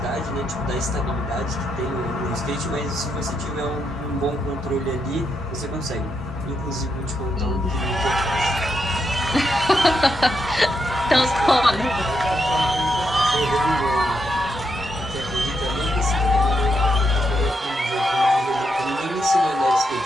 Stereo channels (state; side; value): normal; both; correlation 0.81